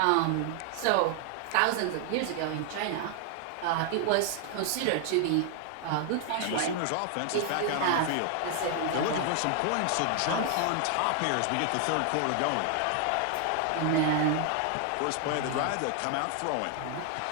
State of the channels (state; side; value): different; both; correlation 0.00